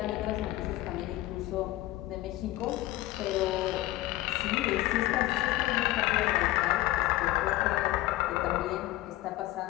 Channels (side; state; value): right; quieter; 16.9 dB